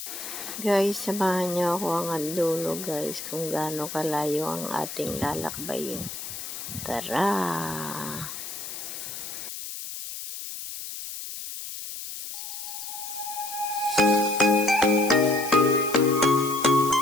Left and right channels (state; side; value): noise; left; hiss, 8 dB below the sound